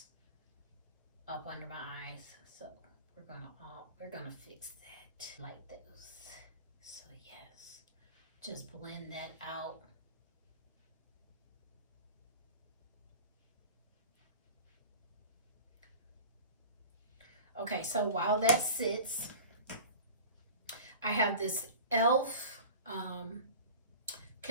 up under my eyes. So we're gonna fix that like those. So yes, just blend that out. Okay, so while that sits, I have this e.l.f.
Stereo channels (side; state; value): both; inverted; correlation -0.37